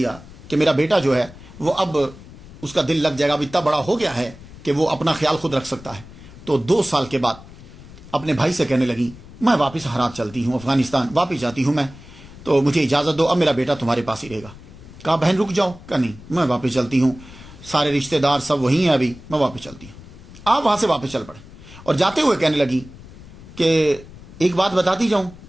کہ میرا بیٹا جو ہے وہ اب اس کا دل لگ جائے گا، اب اتنا بڑا ہو گیا ہے کہ وہ اپنا خیال خود رکھ سکتا ہے. تو 2 سال کے بعد اپنے بھائی سے کہنے لگی میں واپس ہرات چلتی ہوں، افغانستان واپس جاتی ہوں میں، تو مجھے اجازت دو، اب میرا بیٹا تمہارے پاس ہی رہے گا. کہا بہن رک جاؤ. کہا نہیں میں واپس چلتی ہوں، سارے رشتہ دار سب وہیں ہیں، ابھی میں واپس چلتی ہوں. آپ وہاں سے واپس چل پڑے اور جاتے ہوئے کہنے لگی کہ ایک بات بتاتی جاؤں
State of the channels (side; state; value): left; noise; rumble, 18 dB below the sound